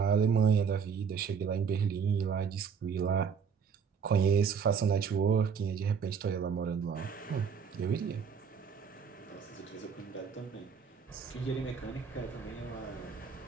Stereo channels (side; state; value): left; quieter; 6.5 dB